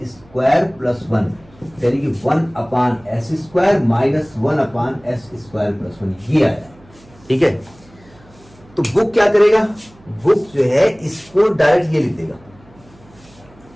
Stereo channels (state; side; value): noise; right; hum, 27 dB below the sound